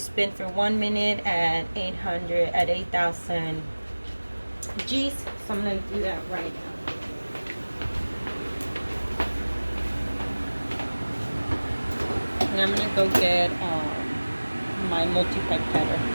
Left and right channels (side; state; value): both; inverted; correlation -1.00